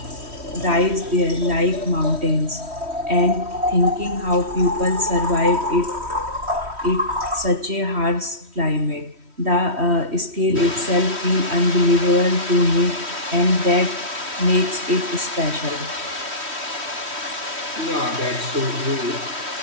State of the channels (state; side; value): late; left; 3.1 ms